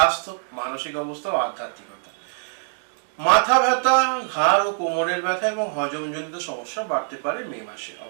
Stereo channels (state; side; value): silent; left; digital silence